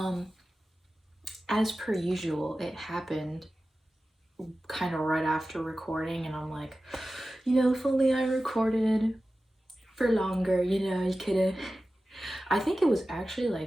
as per usual, it happened kind of right after recording, and I'm like, if only I recorded for longer, you could've. I think it was actually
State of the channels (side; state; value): both; normal; correlation 0.95